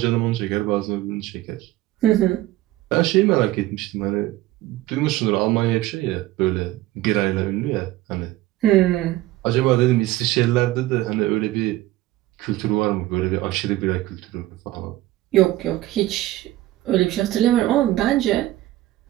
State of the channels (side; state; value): left; quieter; 16.1 dB